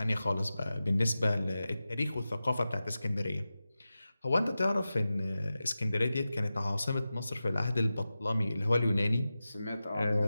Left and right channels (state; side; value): inverted; both; correlation -0.94